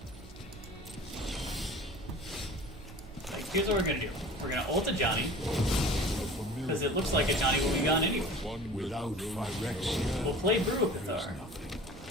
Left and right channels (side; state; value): both; normal; correlation 0.42